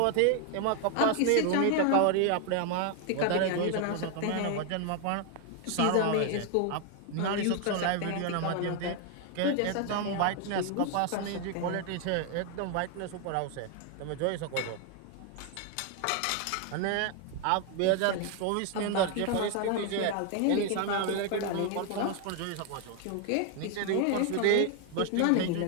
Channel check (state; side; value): different; both; correlation 0.01